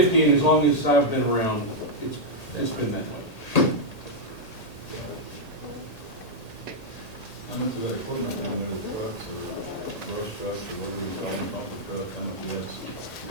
and as long as I've been around, it's been that way. How much of that equipment down there, the trucks or brush trucks or whatever you call them, pumper truck, how much of that's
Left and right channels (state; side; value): late; right; 1.8 ms